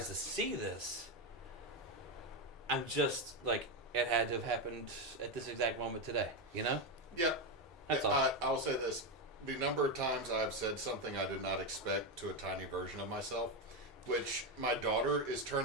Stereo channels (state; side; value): normal; both; correlation 0.09